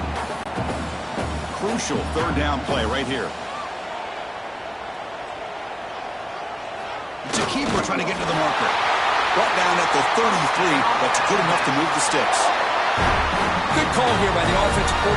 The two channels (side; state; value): both; identical; correlation 1.00